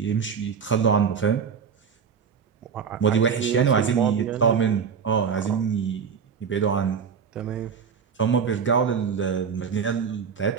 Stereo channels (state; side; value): quieter; left; 6.6 dB